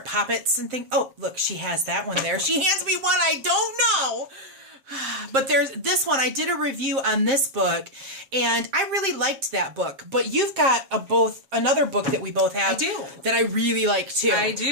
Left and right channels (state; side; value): late; left; 7.6 ms